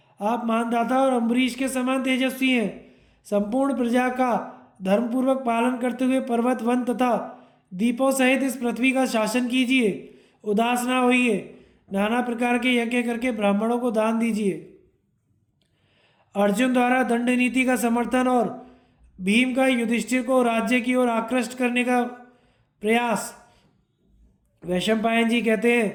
आप मानदाता और अम्बरीश के समान तेजस्वी हैं। संपूर्ण प्रजा का धर्मपूर्वक पालन करते हुए पर्वत, वन तथा द्वीपों सहित इस पृथ्वी का शासन कीजिए। उदास ना होइए, नाना प्रकार के यज्ञ करके ब्राह्मणों को दान दीजिए। अर्जुन द्वारा दंड नीति का समर्थन और भीम का युधिष्ठिर को राज्य की ओर आकृष्ट करने का प्रयास। वैशंपायन जी कहते हैं,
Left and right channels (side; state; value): both; identical; correlation 1.00